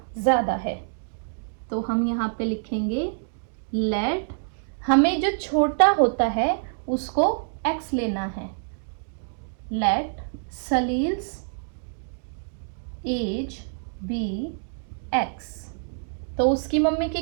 ज्यादा है। तो हम यहाँ पे लिखेंगे लेट, हमें जो छोटा होता है उसको x लेना है। Let Salil's age be x। तो उसकी मम्मी की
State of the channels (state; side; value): silent; left; digital silence